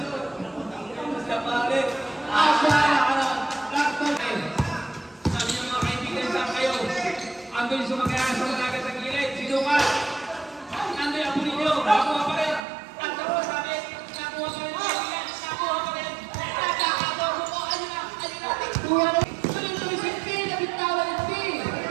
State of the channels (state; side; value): drops out; left; at 12.6 s